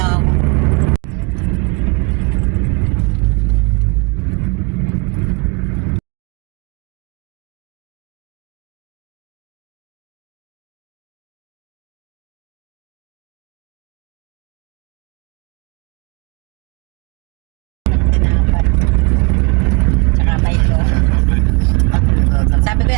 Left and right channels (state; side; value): quieter; left; 29.8 dB